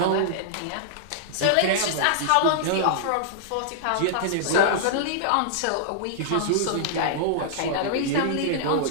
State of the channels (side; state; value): both; different; correlation -0.02